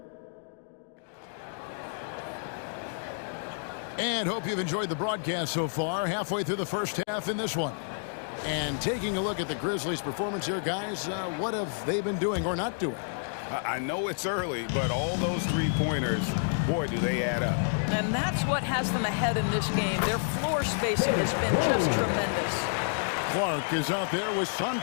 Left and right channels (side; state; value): right; silent; digital silence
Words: And hope you've enjoyed the broadcast so far. Halfway through the first half in this one. And taking a look at the Grizzlies' performance here, guys, what have they been doing or not doing? I know it's early, but all those three-pointers, boy, do they add up. And that's what has them ahead in this game. Their floor spacing has been just tremendous. Clark is out there with